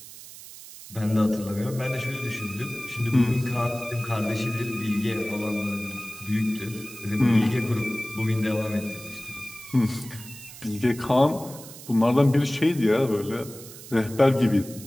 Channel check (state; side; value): noise; right; hiss, 16 dB below the sound